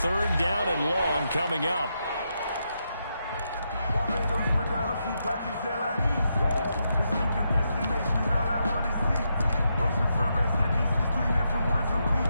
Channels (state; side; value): inverted; both; correlation -0.83